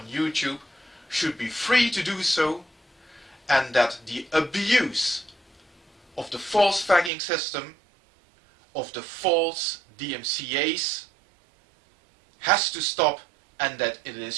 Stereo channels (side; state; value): left; drops out; at 7.1 s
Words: YouTube should be free to do so, and that the abuse of the false flagging system, of the false DMCAs, has to stop, and that it